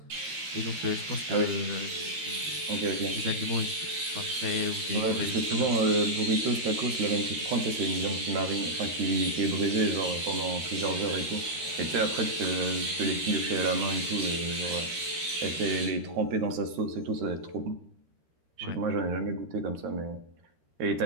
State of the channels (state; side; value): late; left; 13 ms